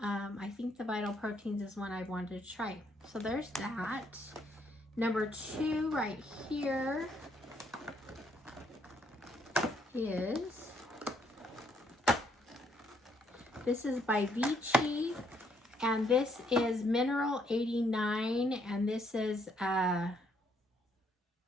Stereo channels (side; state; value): both; normal; correlation 0.70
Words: I think the Vital Proteins is one I wanted to try. So there's that. Number 2 right here is, this is by Vichy, and this is Mineral 89, and this is a